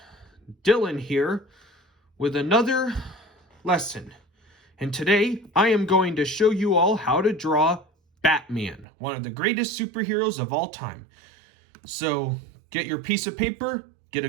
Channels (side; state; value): left; drops out; at 8.8 s